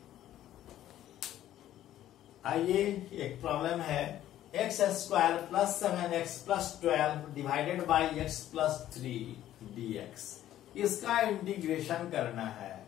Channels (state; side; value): quieter; right; 12.6 dB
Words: आइए, एक प्रॉब्लम है, x square plus 7x plus 12 divided by x plus 3 dx। इसका इंटीग्रेशन करना है।